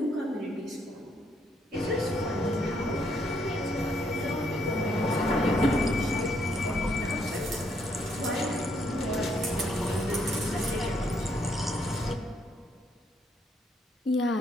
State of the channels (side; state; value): both; normal; correlation 0.72